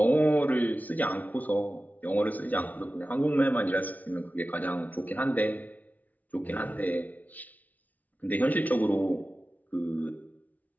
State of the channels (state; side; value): late; right; 0.076 ms